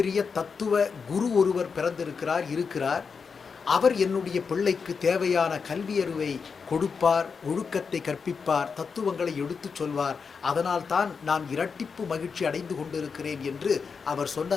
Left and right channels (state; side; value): quieter; right; 5.6 dB